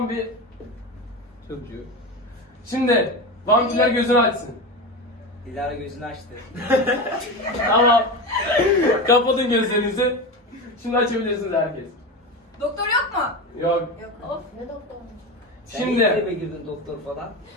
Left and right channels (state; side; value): normal; both; correlation 0.22